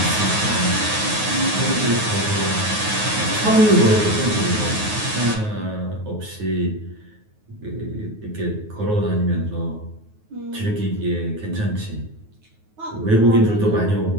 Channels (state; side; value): late; left; 9.4 ms